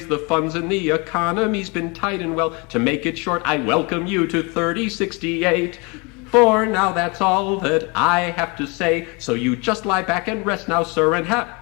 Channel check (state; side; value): quieter; right; 29.6 dB